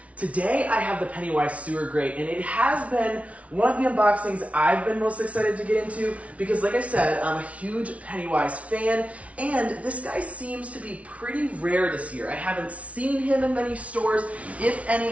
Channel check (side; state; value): left; late; 0.065 ms